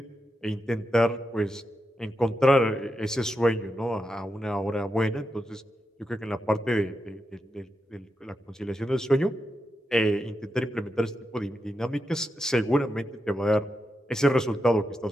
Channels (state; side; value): normal; both; correlation 0.86